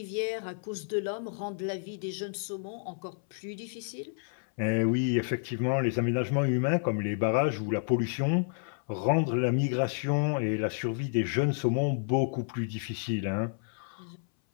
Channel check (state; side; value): silent; right; 58 dB below the other